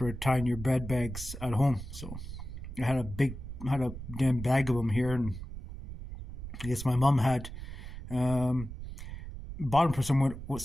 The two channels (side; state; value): right; noise; rumble, 10 dB below the sound